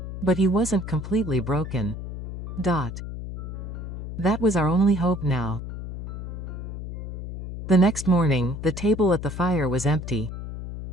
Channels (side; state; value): left; noise; hum, 8 dB below the sound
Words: But he wasn't completely broken. That was our only hope now. The next morning, the table at the fire was empty.